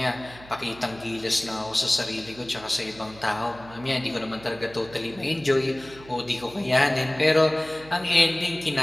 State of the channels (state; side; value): noise; right; hum, 20 dB below the sound